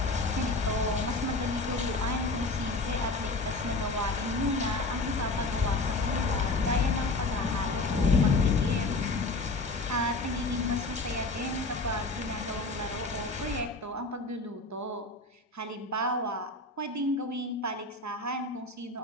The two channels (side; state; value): right; quieter; 3.1 dB